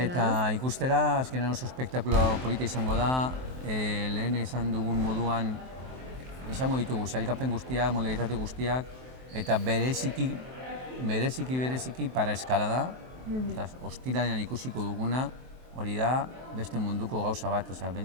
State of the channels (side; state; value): left; late; 23 ms